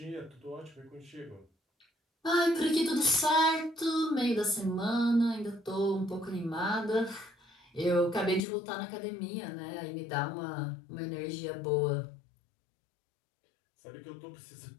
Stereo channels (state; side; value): drops out; right; at 8.4 s